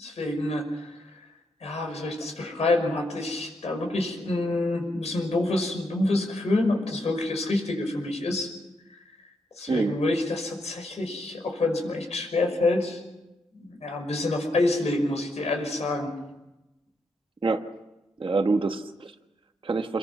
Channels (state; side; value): normal; both; correlation 0.79